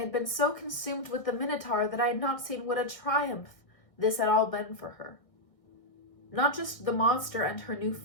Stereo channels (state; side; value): late; right; 1.6 ms